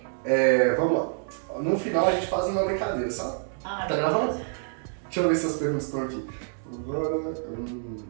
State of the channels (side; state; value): left; silent; 60 dB below the other